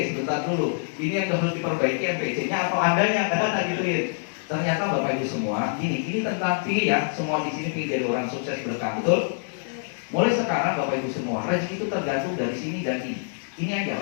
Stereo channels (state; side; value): silent; right; 61 dB below the other